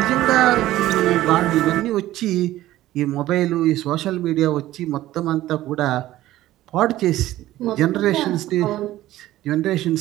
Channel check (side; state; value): left; quieter; 15.1 dB